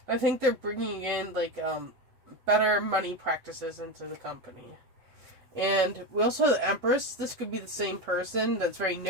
I think they're bringing in, better money practices into the company. And we also have the Empress. This could be the same person that's very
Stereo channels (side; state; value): left; late; 7.9 ms